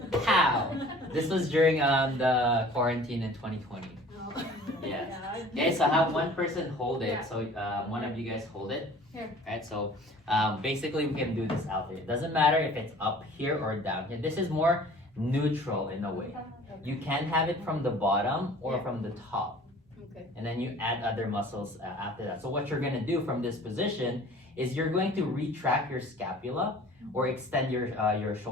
how? This was during the quarantine in 2020. Oh. Yes. Yeah. Okay, so have one person hold it. Yeah. So one of you guys hold it. Here. Right, so basically we can do this out there. It doesn't matter if it's up here or down here. This is more neutral in a way. You can have it from the bottom or Yeah. from the top. Okay. And then you add other muscles after that. So what you're gonna do from this position is you're going to retract your scapula or extend your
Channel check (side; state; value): both; normal; correlation 0.47